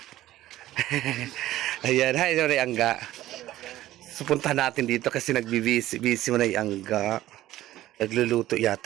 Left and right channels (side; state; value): left; quieter; 14.8 dB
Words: Ayan, hi, sorry, Angga. Supunta natin dito kasi nagbibisi mo na yung Angga. Nagluluto